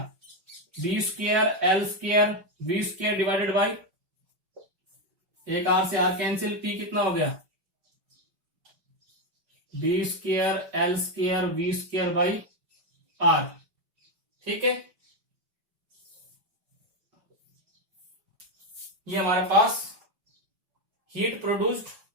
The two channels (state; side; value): late; left; 5.2 ms